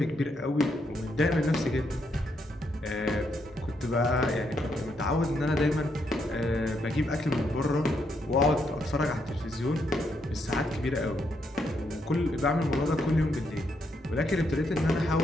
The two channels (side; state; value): both; normal; correlation 0.77